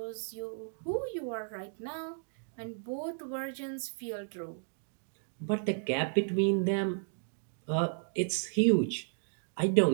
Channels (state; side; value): silent; left; digital silence